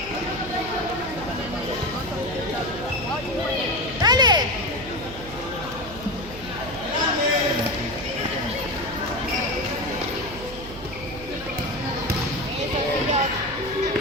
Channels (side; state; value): right; noise; hum, 14 dB below the sound